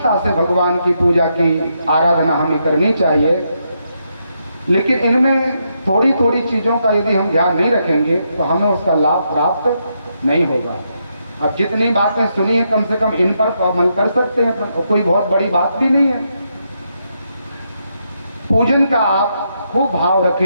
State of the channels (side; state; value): both; inverted; correlation -0.80